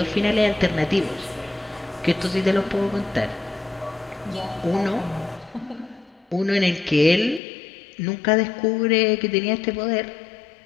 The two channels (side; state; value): right; drops out; at 7.4 s